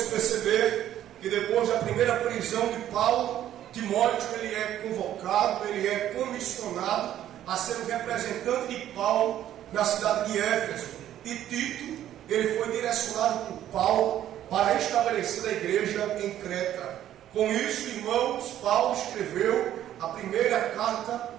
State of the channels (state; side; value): quieter; left; 11.8 dB